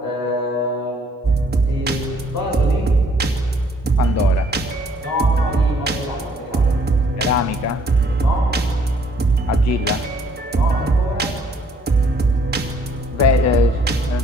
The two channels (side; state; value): both; normal; correlation 0.63